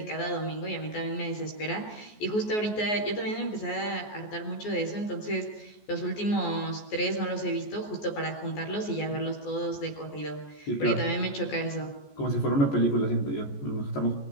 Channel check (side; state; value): right; late; 14 ms